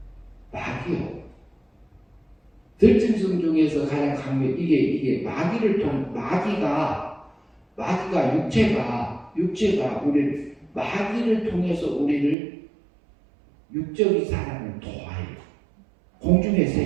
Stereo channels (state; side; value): drops out; left; at 12.4 s